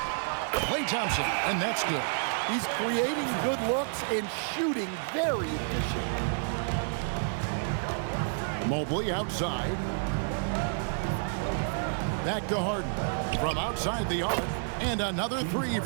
Klay Thompson, and that's good. He's creating good looks and shooting very efficient. Mobley outside. Back to Harden. From outside the arc, and another three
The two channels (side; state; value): left; silent; 58 dB below the other